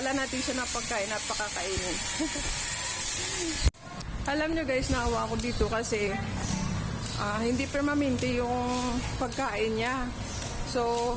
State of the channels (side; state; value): both; identical; correlation 1.00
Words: natin siya ng pagkain at pakakainin. Alam nyo guys, naawa ko dito kasi hindi permanente yung pagkain niya.